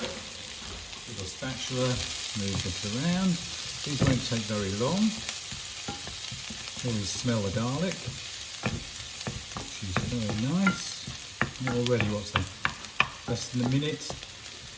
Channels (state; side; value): identical; both; correlation 1.00